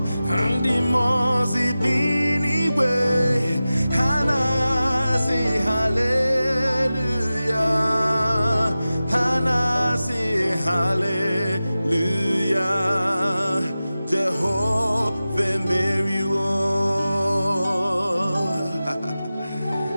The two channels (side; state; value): both; inverted; correlation -0.95